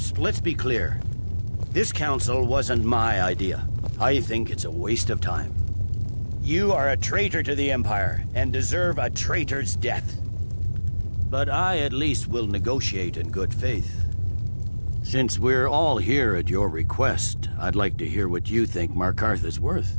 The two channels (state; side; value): inverted; both; correlation -1.00